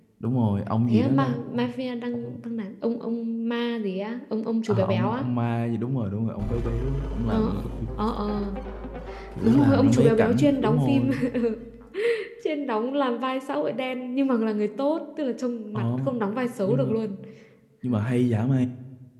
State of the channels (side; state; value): both; identical; correlation 1.00